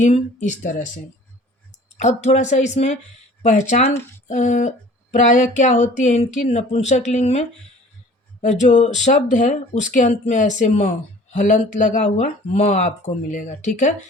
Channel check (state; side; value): normal; both; correlation 0.48